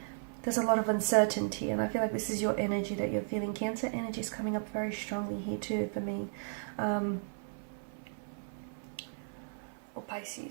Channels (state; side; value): silent; left; 55 dB below the other